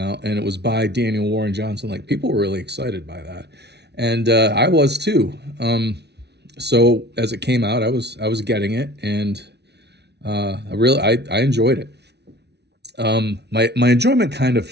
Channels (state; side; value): late; left; 0.49 ms